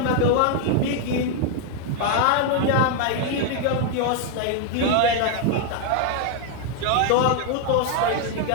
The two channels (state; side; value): different; both; correlation 0.01